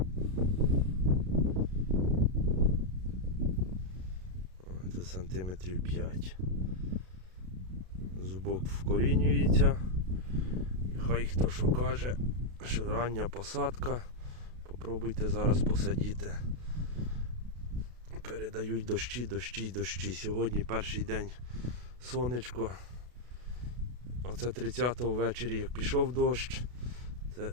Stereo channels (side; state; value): left; late; 32 ms